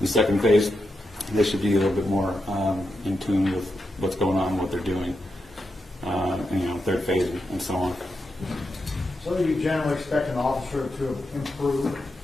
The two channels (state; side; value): normal; both; correlation 0.87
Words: second phase, they should be a little bit more in tune with what's going on, what they're doing. Third phase, and so on. So you generally expect an officer to improve